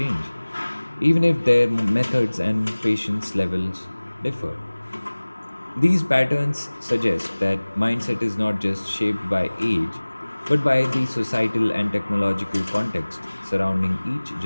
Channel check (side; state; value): both; inverted; correlation -1.00